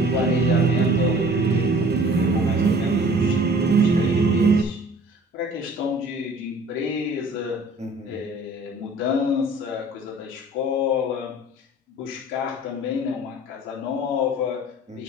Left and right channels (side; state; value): both; normal; correlation 0.49